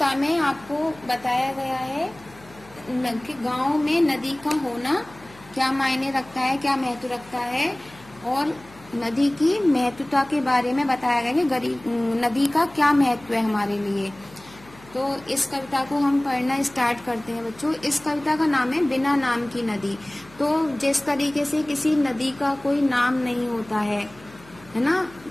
में आपको बताया गया है कि गांव में नदी का होना क्या मायने रखता है, क्या महत्व रखता है, और नदी की महत्वता के बारे में बताया गया कि नदी का क्या महत्व है हमारे लिए। तो इस कविता को हम पढ़ना स्टार्ट करते हैं बच्चों। इस कविता का नाम है बिना नाम की नदी। तो जिस तरीके से किसी नदी का कोई नाम नहीं होता है ना,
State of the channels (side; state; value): left; noise; hum, 23 dB below the sound